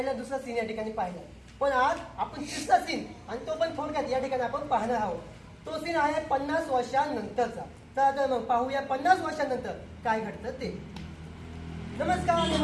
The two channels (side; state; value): both; identical; correlation 1.00